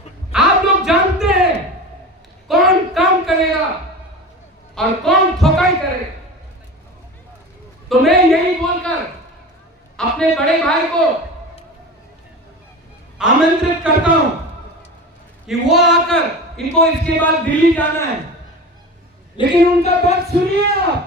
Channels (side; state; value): both; normal; correlation 0.31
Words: आप लोग जानते हैं कौन काम करेगा और कौन ठोकाई करेगा। तो मैं यही बोलकर अपने बड़े भाई को आमंत्रित करता हूं कि वो आकर, इनको इसके बाद दिल्ली जाना है, लेकिन उनका बात सुनिए